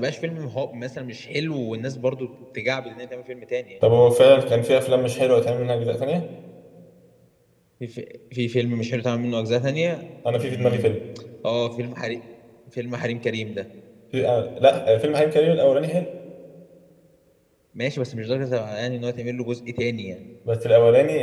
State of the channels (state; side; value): identical; both; correlation 1.00